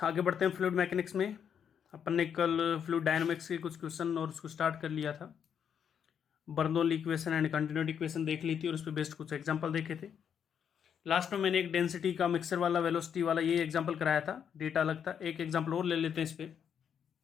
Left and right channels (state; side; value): quieter; right; 8.0 dB